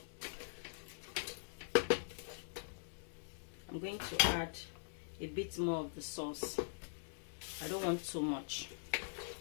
I'm going to add a bit more of the sauce. I don't want too much.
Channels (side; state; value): right; silent; digital silence